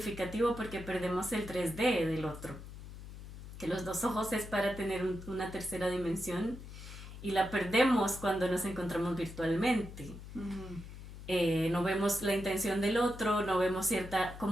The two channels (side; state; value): left; noise; hum, 13 dB below the sound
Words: porque perdemos el 3D del otro, que los dos ojos es para tener una tercera dimensión, y la perdemos cuando nos encontramos virtualmente. ujú, No vemos la intención del otro, no vemos cierta